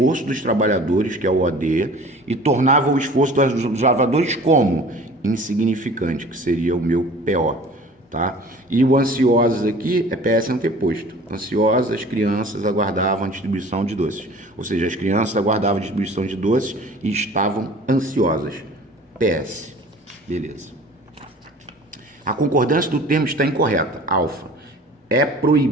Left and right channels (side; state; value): both; normal; correlation 0.45